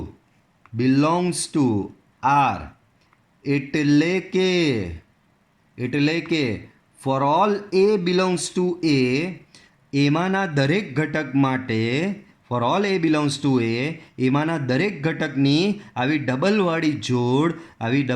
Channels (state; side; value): identical; both; correlation 1.00